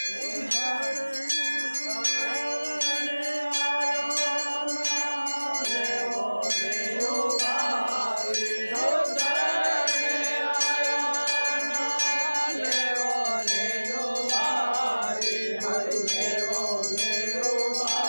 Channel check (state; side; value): inverted; both; correlation -1.00